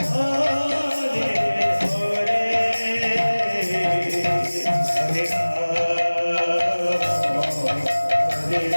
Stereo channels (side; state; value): both; inverted; correlation -1.00